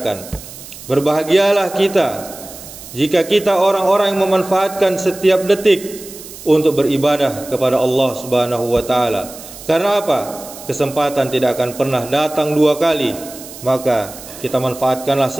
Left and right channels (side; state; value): right; noise; hiss, 15 dB below the sound